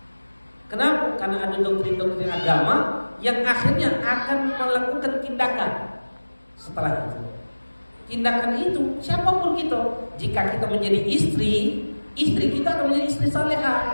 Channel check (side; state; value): both; inverted; correlation -1.00